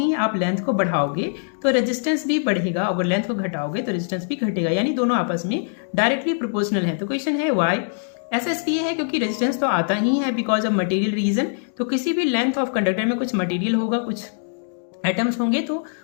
आप लेंथ को बढ़ाओगे तो रेजिस्टेंस भी बढ़ेगा, और लेंथ को घटाओगे तो रेजिस्टेंस भी घटेगा, यानी दोनों आपस में डायरेक्टली प्रोपोर्शनल है। तो क्वेश्चन है वाई। ऐसा इसलिए है क्योंकि रेजिस्टेंस तो आता ही है बिकॉज ऑफ मटेरियल रीजन। तो किसी भी लेंथ ऑफ कंडक्टर में कुछ मटेरियल होगा, कुछ एटम्स होंगे, तो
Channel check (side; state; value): right; silent; digital silence